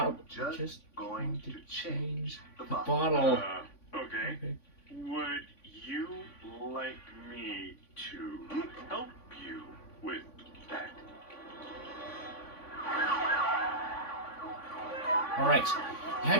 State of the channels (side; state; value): right; late; 3.5 ms